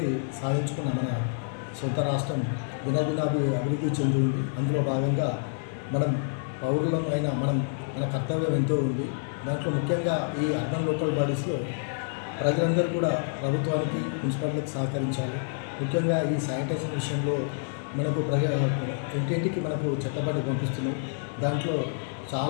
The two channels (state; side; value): silent; right; 58 dB below the other